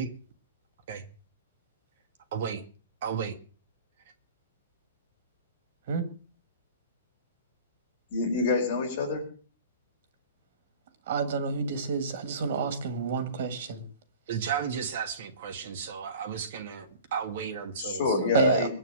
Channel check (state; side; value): inverted; both; correlation -0.42